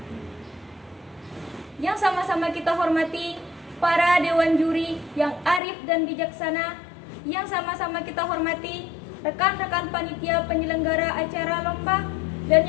Yang sama-sama kita hormati para dewan juri yang arif dan bijaksana, yang sama-sama kita hormati rekan-rekan panitia penyelenggara acara lomba, dan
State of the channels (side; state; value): right; drops out; at 5.6 s